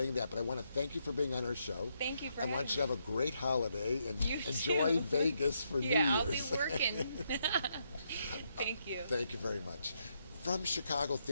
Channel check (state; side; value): inverted; both; correlation -0.77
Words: that. But I want to thank you for being on our show. Thank you for having me. I want you to have a great holiday and enjoy too. Vegas for New Year's. Yeah, I'll be working. Thank you. Thank you very much. From Chicago